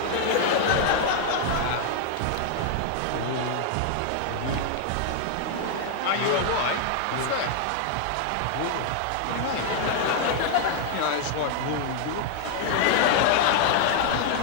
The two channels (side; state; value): both; different; correlation 0.00